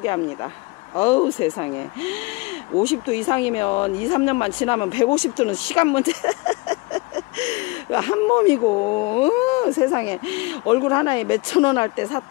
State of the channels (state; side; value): quieter; right; 25.5 dB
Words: 세상에 50도 이상이면 2, 3년만 지나면 150도는 시간 문제. 한 몸이고 세상에 얼굴 하나에 몇천원 할 때